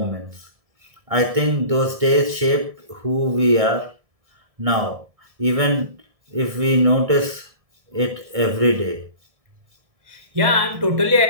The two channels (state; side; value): late; left; 1.7 ms